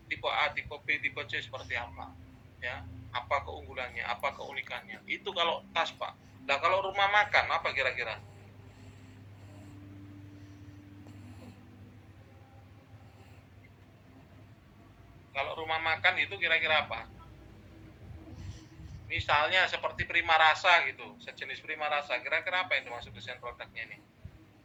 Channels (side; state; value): both; identical; correlation 1.00